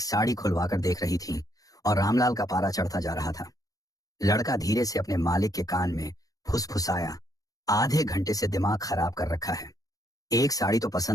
साड़ी खुलवाकर देख रही थी और रामलाल का पारा चढ़ता जा रहा था। लड़का धीरे से अपने मालिक के कान में फुसफुसाया, आधे घंटे से दिमाग खराब कर रखा है, एक साड़ी तो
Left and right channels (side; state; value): right; late; 0.17 ms